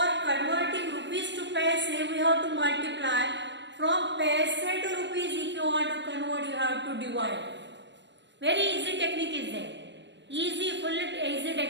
converting rupees to paise, we have to multiply. From paise to rupees, if you want to convert, you have to divide. Very easy technique is there. Full easy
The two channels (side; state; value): left; late; 0.52 ms